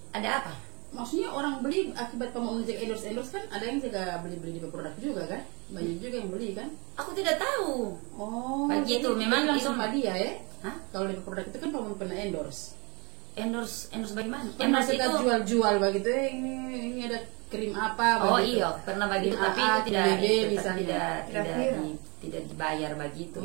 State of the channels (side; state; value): left; quieter; 29.0 dB